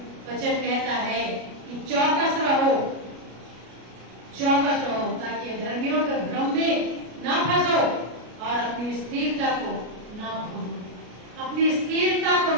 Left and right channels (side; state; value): left; late; 33 ms